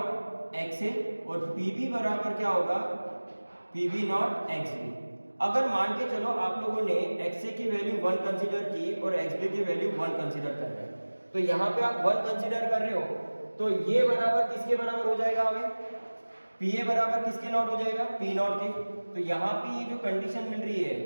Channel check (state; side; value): inverted; both; correlation -1.00